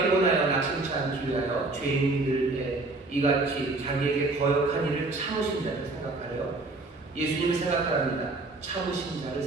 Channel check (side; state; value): left; quieter; 3.2 dB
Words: 피곤하여 낙심치 않기 위하여 죄인들의 이같이 자기에게 거역한 일을 참으신 자를 생각하여 예수님을 생각합니다. 참으신 자를